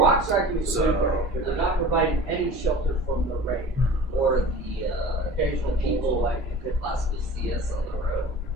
are they're not providing any shelter from the rain or the occasional people like you could possibly see us on the road.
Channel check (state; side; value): noise; right; rumble, 18 dB below the sound